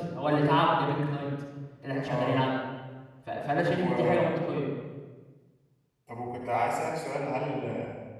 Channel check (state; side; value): identical; both; correlation 1.00